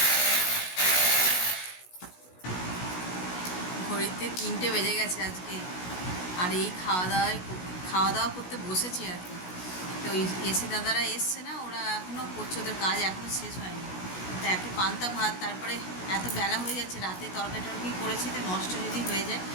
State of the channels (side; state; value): right; late; 16 ms